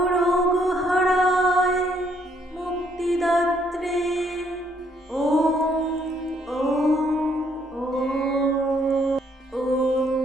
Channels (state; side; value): normal; both; correlation 0.69